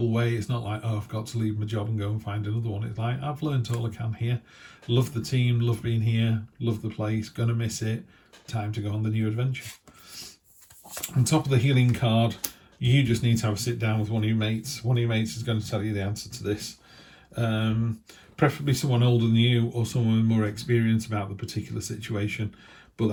way. It's not like, oh, I've got to leave my job and go and find another one. It's like, I've learned all I can here. Love the team, love being here, love the place, gonna miss it. Time to go on the new adventure. On top of the healing card, you just need to have a sit down with one of your mates. One of your mates is going to tell you the answer to this. Preferably someone older than you or someone with more experience about the particular situation. But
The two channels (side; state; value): both; identical; correlation 1.00